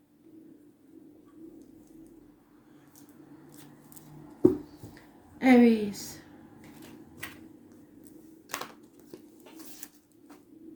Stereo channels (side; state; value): both; identical; correlation 1.00